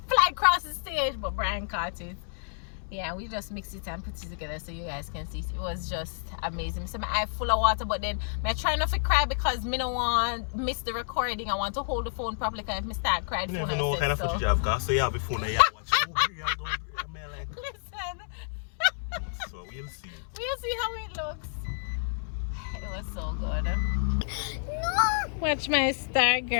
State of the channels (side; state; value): right; silent; 58 dB below the other